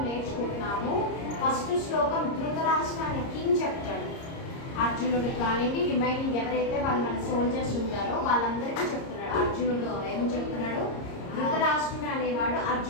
నేర్చుకుంటున్నాము. ఫస్ట్ శ్లోకం ధృతరాష్ట్ర అనే కింగ్ చెప్తాడు. అర్జునుడు కానివ్వండి, రిమైనింగ్ ఎవరైతే వాళ్ళు మన సోల్జర్స్ ఉంటారో వాళ్ళందరికీ చెప్తున్నాడు. అర్జునుడు ఏమని చెప్తున్నాడు? ధృతరాష్ట్రుడు అనేవాడు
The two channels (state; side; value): late; right; 30 ms